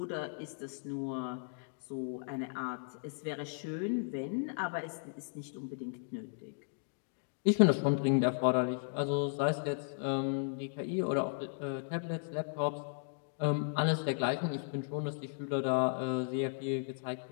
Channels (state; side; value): silent; right; digital silence